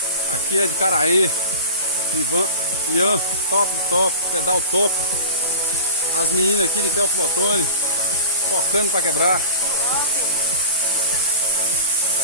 Aqui é de Caraí, Ian, top, pedal top. As meninas aqui de Teófilo Otoni, focando para quebrar.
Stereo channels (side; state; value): both; inverted; correlation -0.35